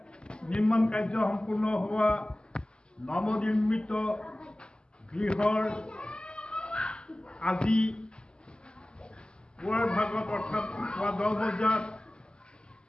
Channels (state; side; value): late; right; 0.048 ms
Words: নিৰ্মাণ কাৰ্য সম্পূৰ্ণ হোৱা নৱনিৰ্মিত গৃহৰ আজি পুৱাৰ ভাগত অৰ্থাৎ পুৱা 10 বজাত